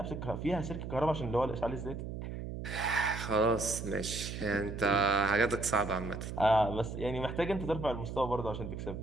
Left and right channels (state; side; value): noise; right; hum, 7 dB below the sound